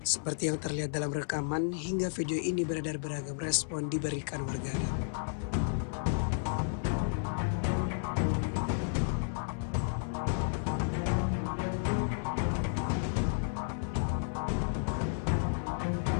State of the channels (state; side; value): silent; right; 56 dB below the other